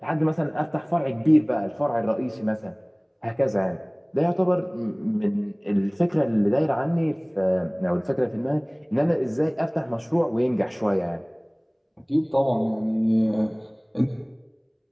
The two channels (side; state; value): both; identical; correlation 1.00